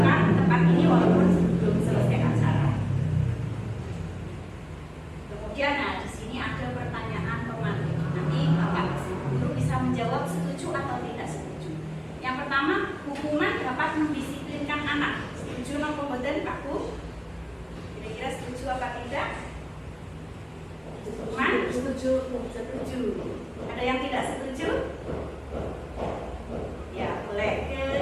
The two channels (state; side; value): identical; both; correlation 1.00